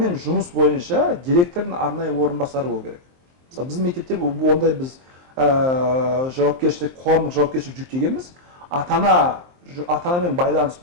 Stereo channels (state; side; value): late; left; 23 ms